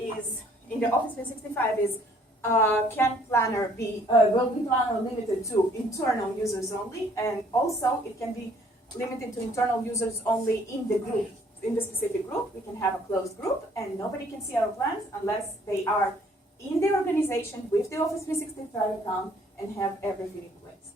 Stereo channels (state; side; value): normal; both; correlation 0.61